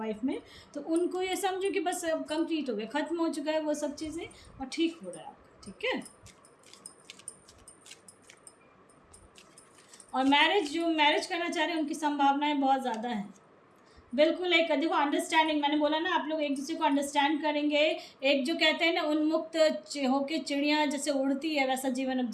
में, तो उनको ये समझो कि बस अब कंप्लीट हो गया, ख़त्म हो चुका है वो सब चीज़ें, और ठीक हो रहा है आपका। ठीक है। और जो मैरिज करना चाह रहे हैं उनकी संभावनाएं बहुत ज़्यादा हैं। बिल्कुल, एक देखो अंडरस्टैंडिंग, मैंने बोला ना आप लोग एक दूसरे को अंडरस्टैंड करेंगे। एक जो कहते हैं ना उन्मुक्त होके चिड़िया जैसे उड़ती है, वैसा जीवन अब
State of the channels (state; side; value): identical; both; correlation 1.00